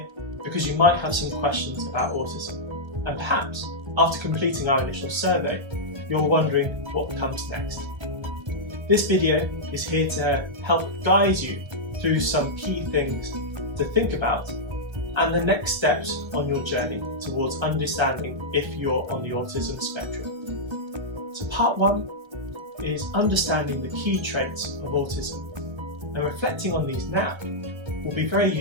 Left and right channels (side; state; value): left; late; 1.3 ms